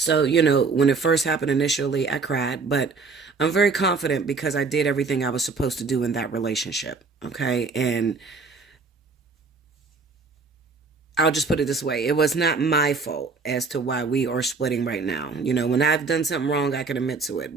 you know, when it first happened initially, I cried, but I'm very confident because I did everything I was supposed to do in that relationship, okay? And I'll just put it this way. It was not my fault as to why we are splitting right now. You know, when I've done something wrong, I can admit to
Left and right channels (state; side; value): quieter; left; 4.4 dB